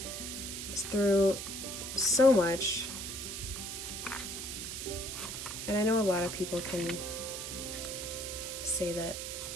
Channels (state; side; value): noise; right; hiss, 6 dB below the sound